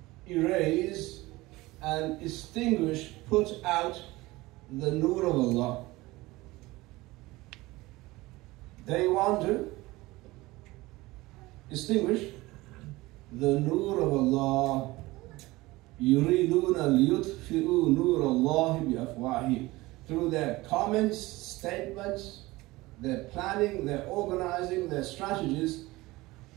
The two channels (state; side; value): quieter; left; 20.1 dB